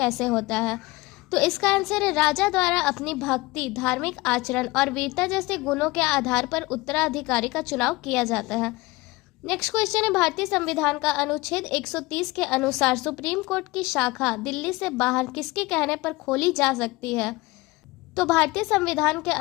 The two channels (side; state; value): right; quieter; 21.8 dB